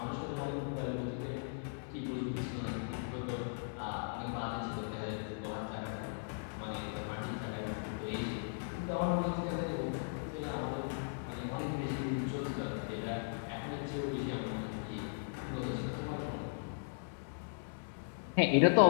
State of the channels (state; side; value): silent; right; 52 dB below the other